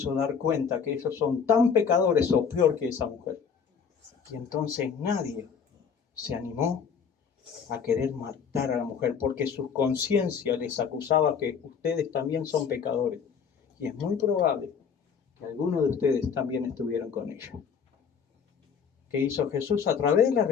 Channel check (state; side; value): quieter; right; 6.6 dB